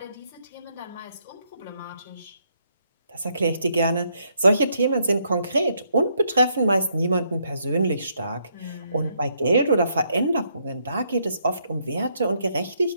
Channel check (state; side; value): inverted; both; correlation -0.74